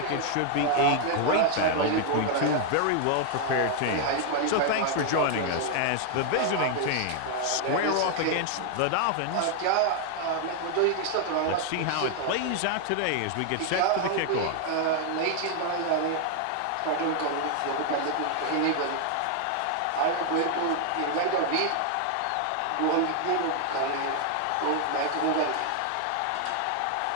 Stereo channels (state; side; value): different; both; correlation 0.00